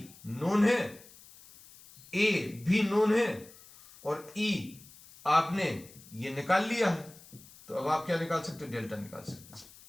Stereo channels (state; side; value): noise; left; hiss, 22 dB below the sound